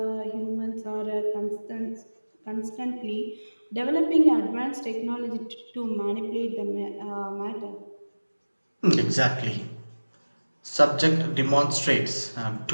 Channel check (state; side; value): inverted; both; correlation -1.00